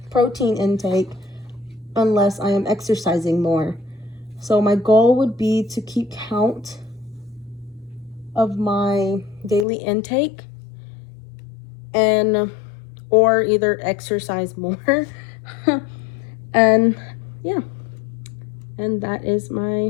protein intake unless I am exercising more. So my goal would be to keep count of my daily intake and or either exercise more. And yeah, and that is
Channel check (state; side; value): drops out; right; at 9.7 s